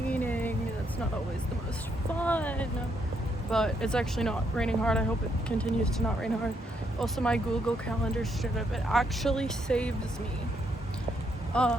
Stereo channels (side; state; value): both; normal; correlation 0.75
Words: That's not always the most fun. But it's actually not raining hard. I hope it continues to not rain hard. Also, my Google Calendar shit up. It actually saves me.